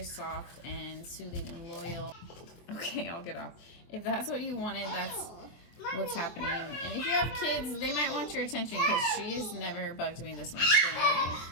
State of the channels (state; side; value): late; right; 23 ms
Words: soft and soothing and loyal. Okay, I'll get off. If that's what you wanted, that's what's happening. And if you have kids, they might want your attention because she's never bugged me this much. Mommy,